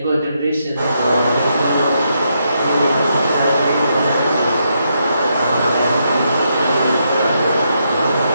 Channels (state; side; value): inverted; both; correlation -0.79